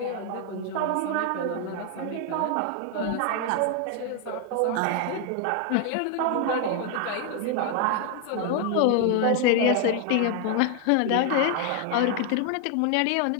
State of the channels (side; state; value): both; different; correlation 0.01